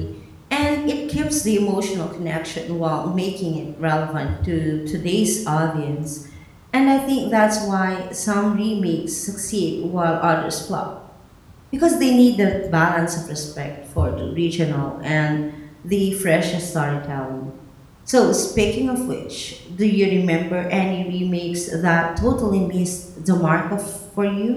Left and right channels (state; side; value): identical; both; correlation 1.00